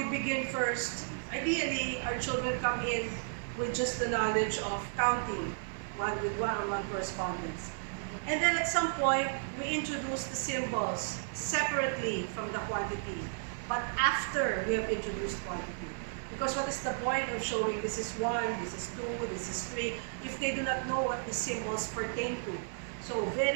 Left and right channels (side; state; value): left; silent; digital silence